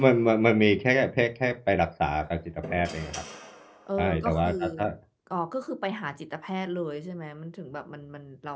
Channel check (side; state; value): both; identical; correlation 1.00